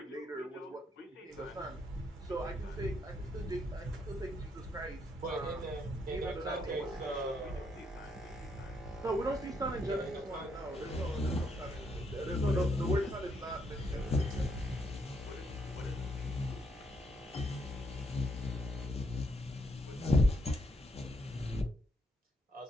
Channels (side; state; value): both; normal; correlation 0.75